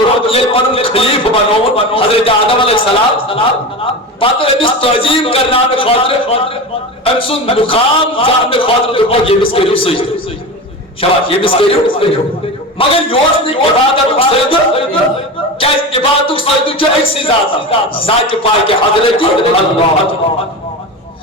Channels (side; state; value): both; normal; correlation 0.26